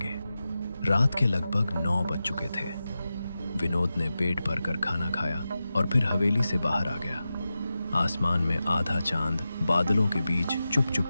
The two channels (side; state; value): both; inverted; correlation -0.92